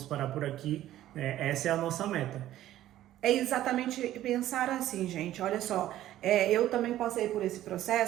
parar por aqui, essa é a nossa meta. É exatamente pensar assim, gente, olha só, eu também passei por esse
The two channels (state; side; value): quieter; left; 13.4 dB